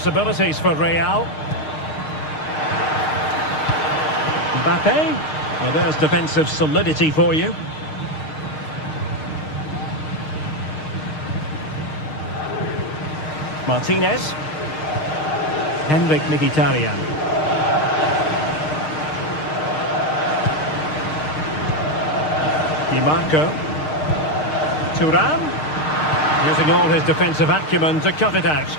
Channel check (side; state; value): right; late; 6.5 ms